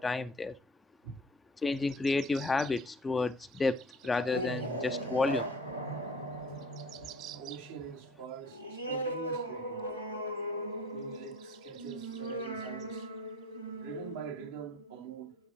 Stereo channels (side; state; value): both; normal; correlation 0.49